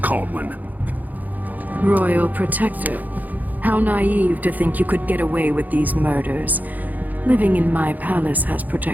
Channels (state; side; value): late; left; 0.082 ms